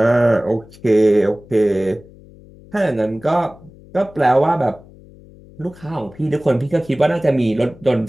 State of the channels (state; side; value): noise; left; hum, 23 dB below the sound